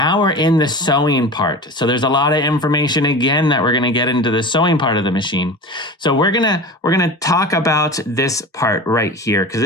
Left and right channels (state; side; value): normal; both; correlation 0.32